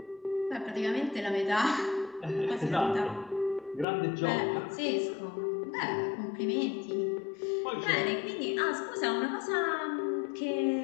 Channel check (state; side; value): drops out; right; at 3.9 s